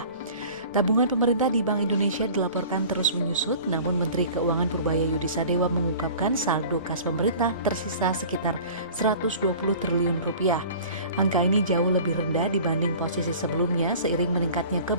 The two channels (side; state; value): both; inverted; correlation -0.43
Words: Tabungan pemerintah di Bank Indonesia dilaporkan terus menyusut, namun Menteri Keuangan Purbaya Yudisadewa mengungkapkan saldo kas pemerintah tersisa sekitar 120 triliun rupiah. Angka ini jauh lebih rendah dibanding posisi sebelumnya seiring meningkatnya